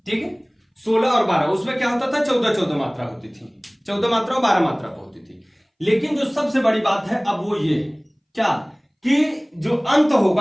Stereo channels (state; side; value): identical; both; correlation 1.00